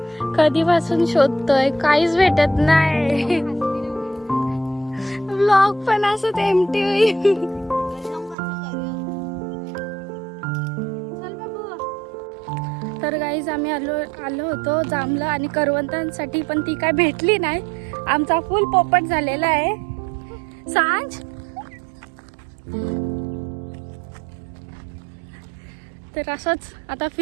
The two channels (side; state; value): left; drops out; at 8.3 s